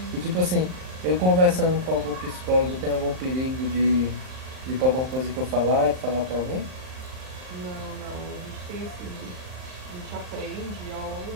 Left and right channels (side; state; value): left; late; 38 ms